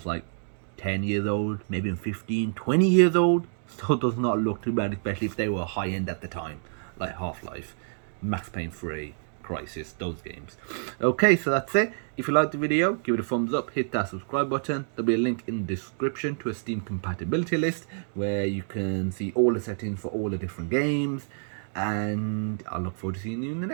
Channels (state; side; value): silent; left; digital silence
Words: like 10 years old, maybe 15, 20 years old, still does not look too bad, especially if they were high end at the time, like Half-Life, Max Payne 3, Crisis, those games. Okay, so that's it. If you liked the video, give it a thumbs up, hit that subscribe button. There'll be a link in the description to a Steam compatibility list where you can see all the settings for all the different games. And I look forward to seeing you in the